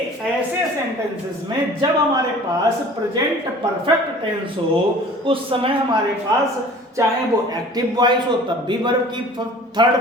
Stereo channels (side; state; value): both; normal; correlation 0.46